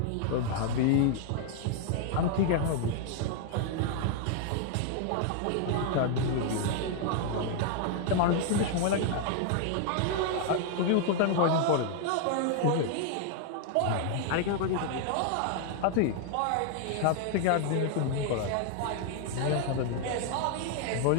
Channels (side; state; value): both; different; correlation 0.00